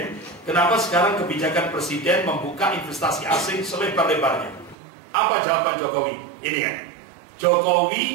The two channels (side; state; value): left; drops out; at 4.8 s